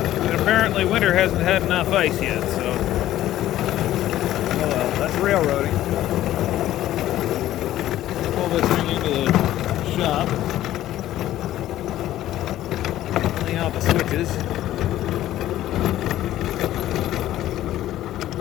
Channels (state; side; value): quieter; right; 13.7 dB